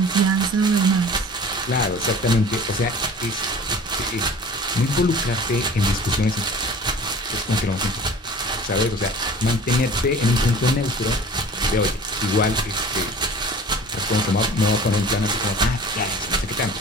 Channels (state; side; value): normal; both; correlation 0.43